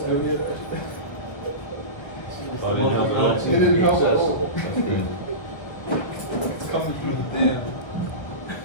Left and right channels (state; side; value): late; right; 1.4 ms